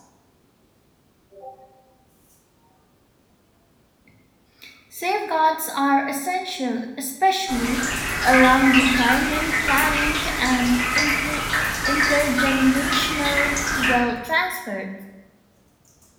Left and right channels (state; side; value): identical; both; correlation 1.00